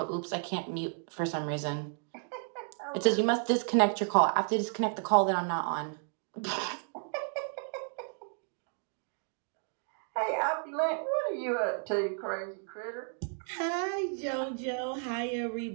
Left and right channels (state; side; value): silent; left; 56 dB below the other